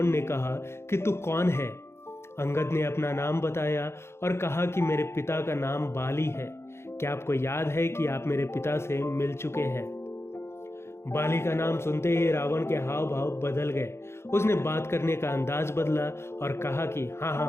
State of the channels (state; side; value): late; right; 0.12 ms